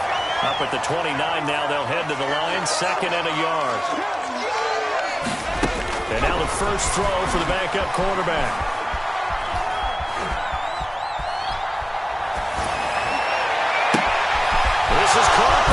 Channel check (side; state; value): both; identical; correlation 1.00